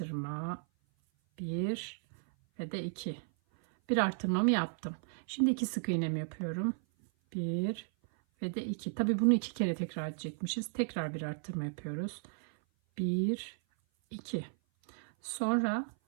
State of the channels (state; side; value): silent; left; 55 dB below the other